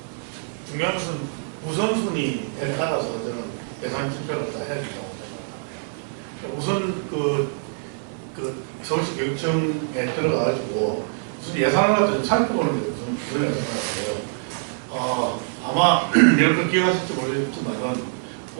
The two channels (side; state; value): left; silent; 60 dB below the other